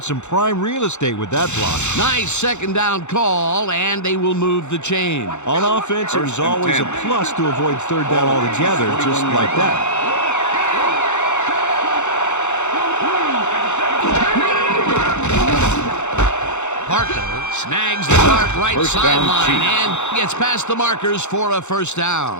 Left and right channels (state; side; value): late; right; 0.83 ms